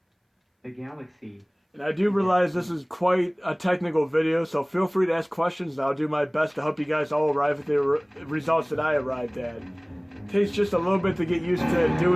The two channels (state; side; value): identical; both; correlation 1.00